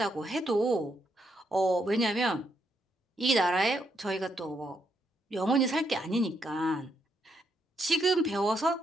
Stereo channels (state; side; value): normal; both; correlation 0.77